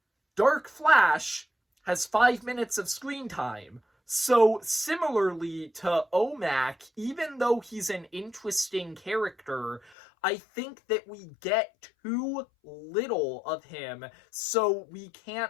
Dark Flash has 5 minutes of screen time. So similarly to OMAC, even though he's an interesting character, I think that we get too little of him, so we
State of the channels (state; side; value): drops out; right; at 9.9 s